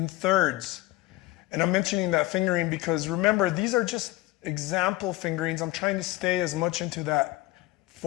thirds. And I'm mentioning that fingering because remember, these are just example fingerings. I'm trying to stay as much into that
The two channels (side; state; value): right; quieter; 18.0 dB